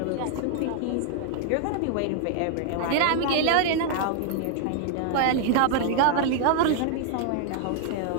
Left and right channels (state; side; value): different; both; correlation 0.00